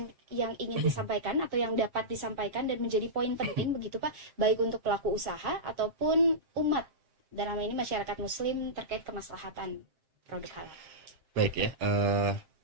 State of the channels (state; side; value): late; left; 7.6 ms